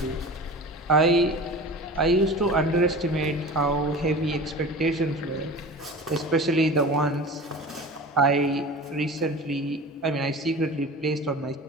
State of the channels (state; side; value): normal; both; correlation 0.36